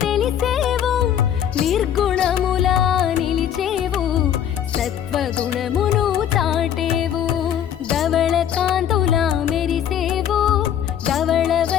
తెలిసేవు నిర్గుణముల నిలిచేవు సత్వగుణమును చాటేవు ధవళ కాంతుల మెరిసేవు ధవళ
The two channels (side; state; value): right; quieter; 9.7 dB